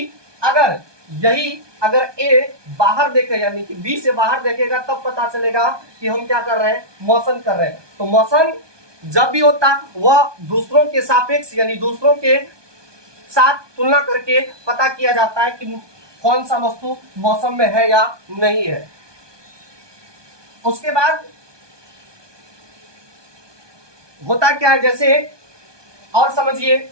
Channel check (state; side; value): late; left; 1.2 ms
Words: अगर ए बाहर देखे, यानी कि बी से बाहर देखेगा, तब पता चलेगा कि हम क्या कर रहे हैं, मोशन कर रहे हैं। तो मोशन जब भी होता वह दूसरों के सापेक्ष, यानी दूसरों के साथ तुलना करके पता किया जाता है कि कौन सा वस्तु मौसम में है या नहीं है। उसके बाद होता क्या है, जैसे और समझिए,